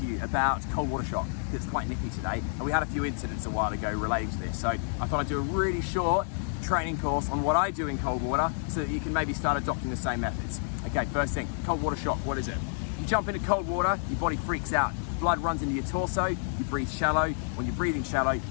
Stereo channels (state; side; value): silent; right; digital silence